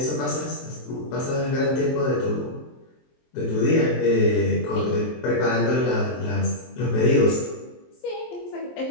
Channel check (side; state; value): right; late; 23 ms